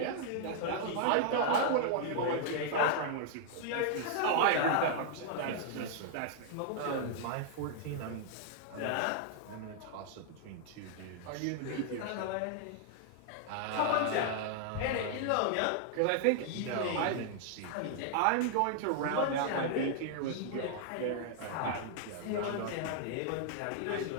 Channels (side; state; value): both; different; correlation -0.01